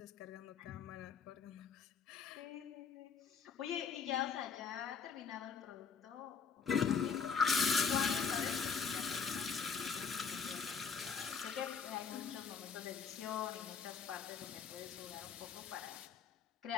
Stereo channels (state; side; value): quieter; right; 6.0 dB